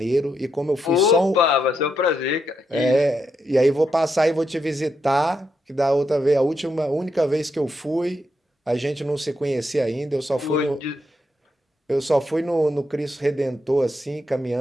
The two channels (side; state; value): both; normal; correlation 0.81